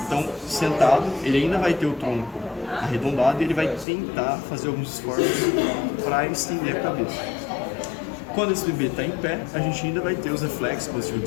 Então, sentado, ele ainda vai ter o tronco arredondado e ele vai tentar fazer alguns esforços para estender a cabeça. Quando esse bebê está em pé, a gente ainda vai ter os reflexos positivos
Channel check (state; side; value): drops out; right; at 3.9 s